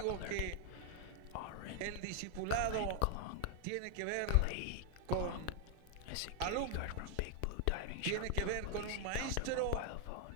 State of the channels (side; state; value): both; different; correlation 0.00